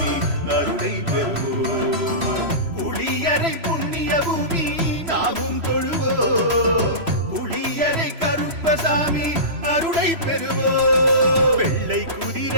அருளை பெறுவோம். புளியரை புண்ணிய பூமி நாமும் தொழுவோம், புளியரை கருப்பசாமி அருளை பெறுவோம். வெள்ளை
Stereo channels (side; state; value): left; late; 3.0 ms